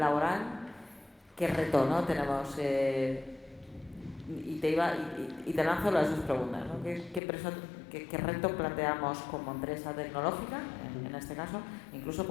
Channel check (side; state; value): right; drops out; at 7.2 s